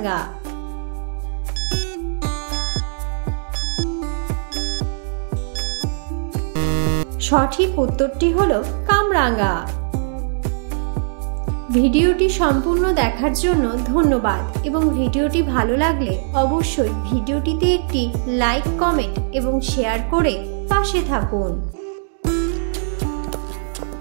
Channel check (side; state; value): left; silent; digital silence